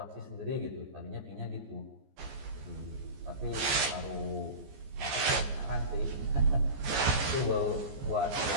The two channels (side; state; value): left; late; 14 ms